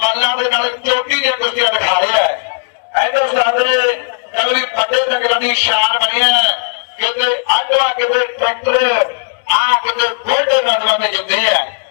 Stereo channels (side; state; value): right; silent; digital silence